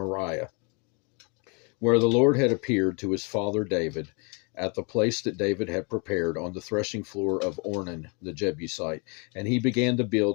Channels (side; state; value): right; quieter; 33.2 dB